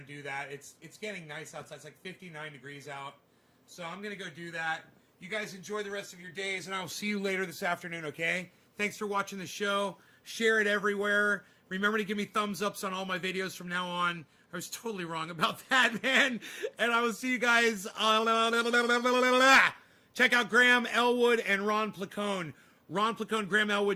do that. It's getting nice outside. It's like 59 degrees out. So I'm gonna go do that. You guys enjoy the rest of your days, and I'll see you later this afternoon, okay? Thanks for watching the show. Share it everywhere. Remember to give me thumbs ups on all my videos from now on. I was totally wrong about that, man. And I will see you guys. Check out Graham Elwood and Ron Placone. Ron Placone, Graham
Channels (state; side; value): identical; both; correlation 1.00